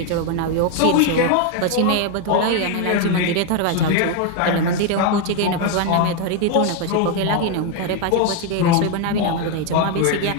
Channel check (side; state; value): both; different; correlation 0.01